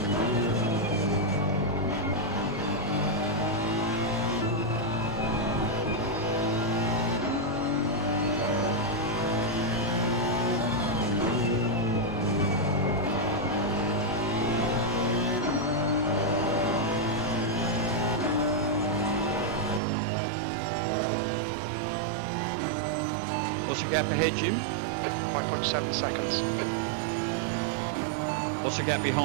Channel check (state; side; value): drops out; left; at 19.8 s